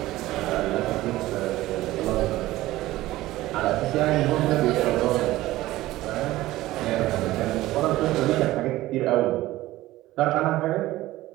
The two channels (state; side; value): quieter; left; 16.7 dB